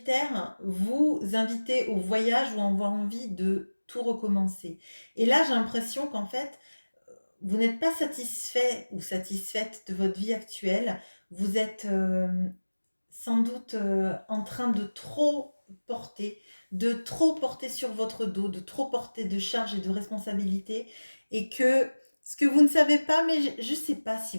vous invitait au voyage ou avoir envie de tout recommencer. Et là, j'ai l'impression qu'en fait, vous n'êtes pas satisfait ou satisfaite de votre vie actuelle. Vous êtes sans doute en train de trop porter sur votre dos, de trop porter de charges et de responsabilités, et que ce que vous ne savez pas, mais je ne sais pas si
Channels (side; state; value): both; inverted; correlation -1.00